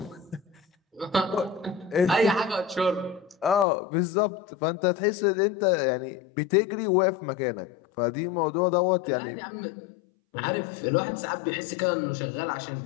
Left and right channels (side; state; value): right; drops out; at 3.7 s